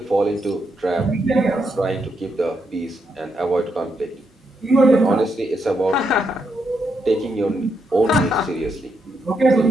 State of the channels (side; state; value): both; normal; correlation 0.80